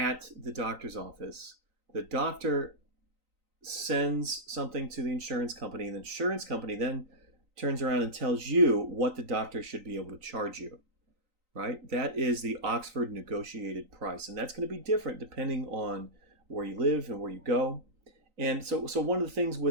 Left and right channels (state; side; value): late; left; 3.9 ms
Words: the doctor's office. The doctor sends something to the insurance company, and the insurance company then turns around and tells you what the doctor should be able to charge you. Right? That is the Oxford negotiated price, and that's going to be different depending on where you live and where you go. And so one of the things